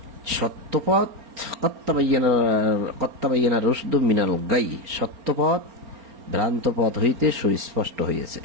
সত্যপথ কত্তাবাইয়ানা রুশদু মিনাল গাই, সত্যপথ ভ্রান্ত পথ হইতে সুস্পষ্ট হইয়াছে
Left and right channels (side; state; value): left; late; 4.3 ms